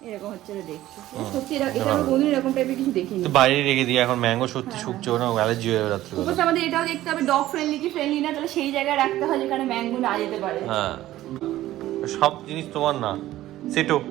এরকম হচ্ছে দেখতে সত্যি, এটা আমি কোনদিন এরকম টাইপের কিছু দেখিনি। তুই বাইরে রেখে দিয়ে, এখন ম্যাঙ্গো সত্যি শুকছে না, অ্যালার্জি হয়ে রাত্রে। উপরে আমাদের এটাও দেখতে হবে ডগ ফ্রেন্ডলি কি ফ্রেন্ডলি না, তাহলে সেই জায়গায় রাখতে হয় যেখানে ম্যাঙ্গো না যেতে পারে। হ্যাঁ সব জিনিস তোমার না। সিটু,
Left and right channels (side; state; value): left; quieter; 14.8 dB